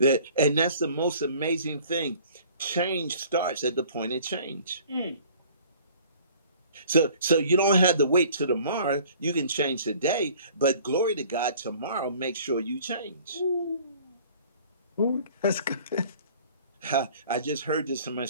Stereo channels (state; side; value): inverted; both; correlation -0.51